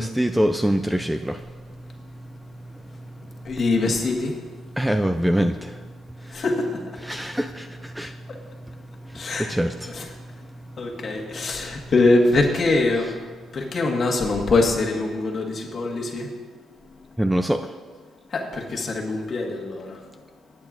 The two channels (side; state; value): both; normal; correlation 0.88